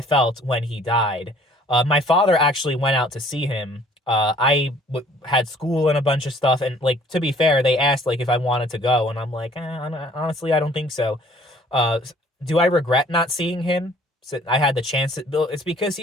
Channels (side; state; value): both; normal; correlation 0.56